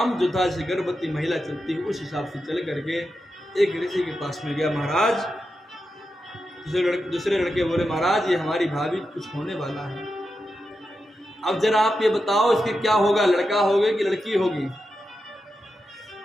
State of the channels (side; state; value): both; normal; correlation 0.89